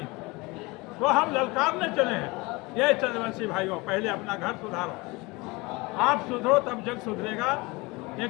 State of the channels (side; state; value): right; quieter; 24.4 dB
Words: तो हम ललकारने चले हैं। ये चंद्रवंशी भाइयों, पहले अपना घर सुधारो। आप सुधरो तब जग सुधरेगा।